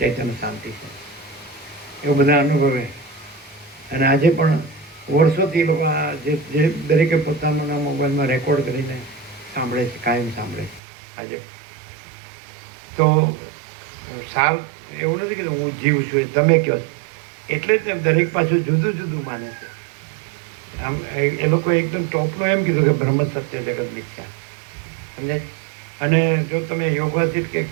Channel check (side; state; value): left; drops out; at 10.8 s